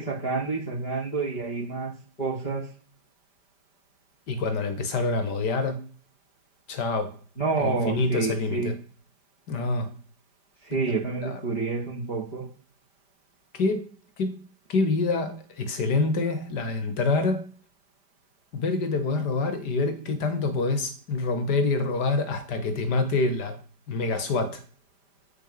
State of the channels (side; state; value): right; late; 5.1 ms